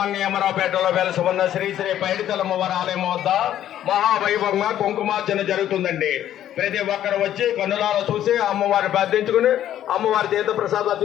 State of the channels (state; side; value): quieter; right; 11.5 dB